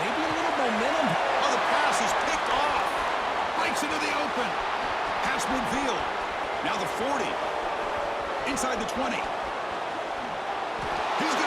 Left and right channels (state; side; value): identical; both; correlation 1.00